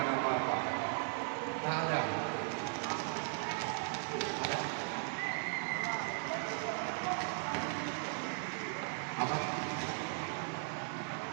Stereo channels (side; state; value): left; silent; 53 dB below the other